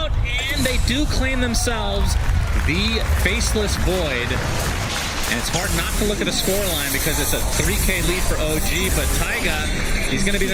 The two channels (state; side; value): identical; both; correlation 1.00